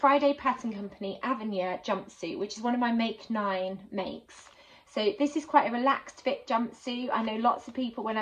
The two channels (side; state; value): both; identical; correlation 1.00